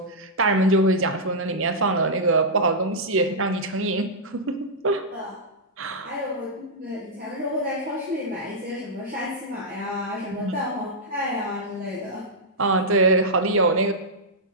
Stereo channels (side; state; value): both; normal; correlation -0.09